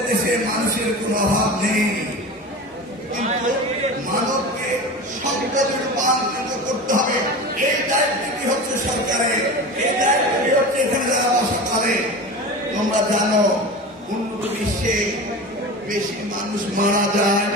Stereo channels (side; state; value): both; normal; correlation 0.30